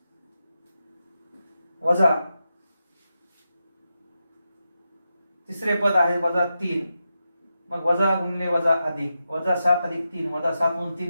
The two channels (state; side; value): inverted; both; correlation -0.89